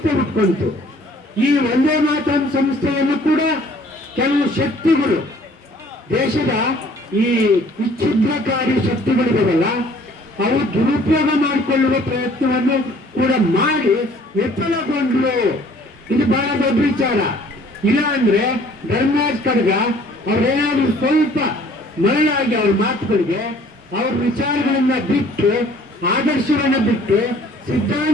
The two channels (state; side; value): normal; both; correlation 0.56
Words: ಹುಟ್ಕೊಂತು. ಈ ಒಂದೇ ಮಾತರಂ ಸಂಸ್ಥೆಯನ್ನು ಕೂಡ ಕೆಲವು ಶಕ್ತಿಗಳು, ದೇಶದ ಈ ವಿಚ್ಛಿದ್ರಕಾರಿ ಶಕ್ತಿಗಳಿದಾವಲ್ಲ, ಅವು ದುರುಪಯೋಗ ಮಾಡಿಕೊಳ್ಳುವ ಪ್ರಯತ್ನವನ್ನು ಕೂಡ ಮಾಡಿ ವಿಫಲಗೊಂಡ್ರು. ಇದು ಬಹಳ ದೊಡ್ಡ ವಿಚಾರ. ಇಲ್ಲ ಅಂದ್ರೆ ಧರ್ಮರಾಜ್ ಕಡಗ ಅವ್ರೇನಾದ್ರೂ ಸ್ವಲ್ಪ ಮರಳಾಗಿ ಅವ್ರ ಮಾತುಗಳಿಗೆ ಅವ್ರ ವಿಚಾರಗಳನ್ನ ಬಿಟ್ಟು, ಆದರ್ಶವನ್ನ ಬಿಟ್ಟು,